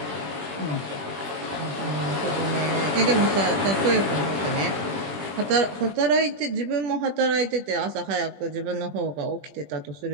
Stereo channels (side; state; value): left; late; 20 ms